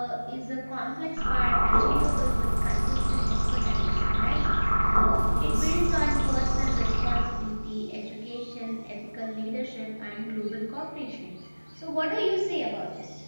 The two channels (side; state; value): both; inverted; correlation -1.00